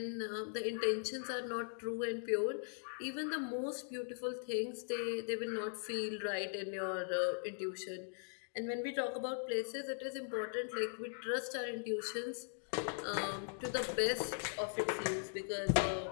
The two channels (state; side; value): silent; right; digital silence